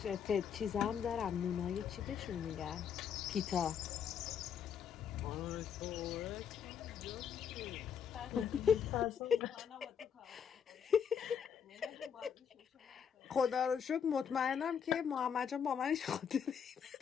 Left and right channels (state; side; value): quieter; right; 7.6 dB